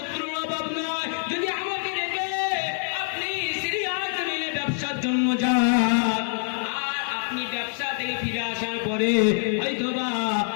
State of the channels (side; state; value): right; silent; 57 dB below the other